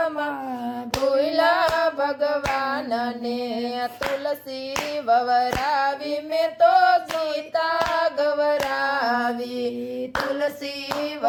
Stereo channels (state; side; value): identical; both; correlation 1.00